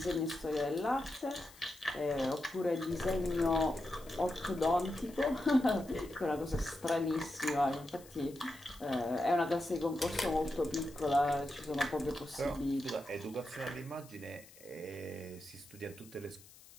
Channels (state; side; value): noise; left; hiss, 22 dB below the sound